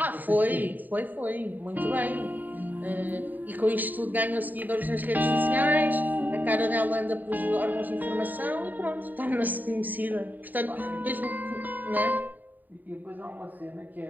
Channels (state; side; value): late; left; 0.087 ms